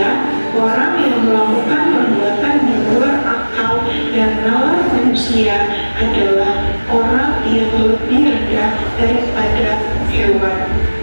orang yang melakukan perbuatan di luar akal dan nalar manusia adalah orang yang lebih rendah daripada hewan.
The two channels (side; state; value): both; inverted; correlation -1.00